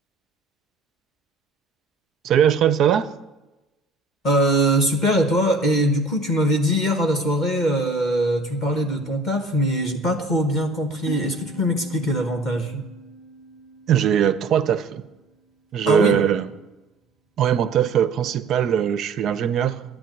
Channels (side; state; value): left; quieter; 3.4 dB